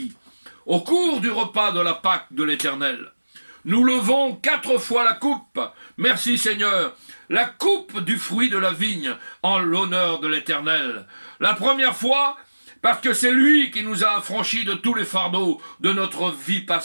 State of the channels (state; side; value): inverted; both; correlation -1.00